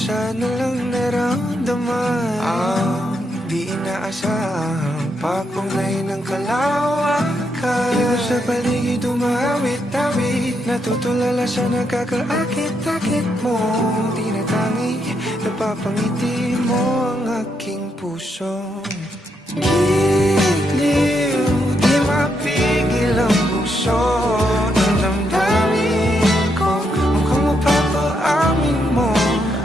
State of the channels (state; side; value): normal; both; correlation 0.79